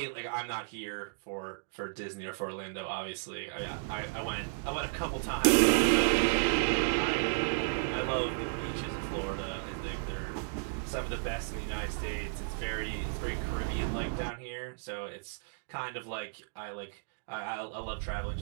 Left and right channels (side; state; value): left; silent; digital silence